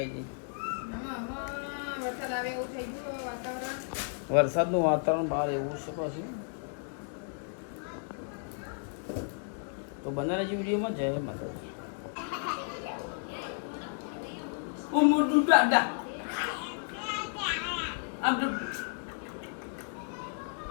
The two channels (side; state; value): right; silent; 56 dB below the other